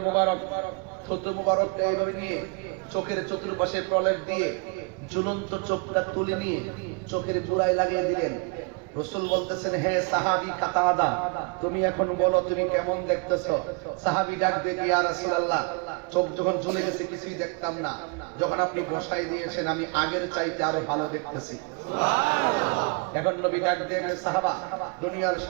মুবারক থুতু মুবারক এইভাবে নিয়ে চোখের চতুর্পাশে প্রলেপ দিয়ে ঝুলন্ত চোখটা তুলে নিয়ে চোখের গোড়ায় লাগিয়ে দিলেন। রাসূল বলতেছেন, হে সাহাবী কাতাদা, তুমি এখন বলো তুমি কেমন দেখতেছো? সাহাবী ডাক দিয়ে, ইয়া রাসূলুল্লাহ, চোখ যখন ঝুলে গেছে কিছুই দেখতাম না, যখন আপনি বসাই দিয়েছেন আমি আগের চাইতে আরো ভালো দেখতেছি। এখন নবী ডাক দিয়ে, সাহাবা, দুনিয়ার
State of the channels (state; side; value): quieter; left; 31.8 dB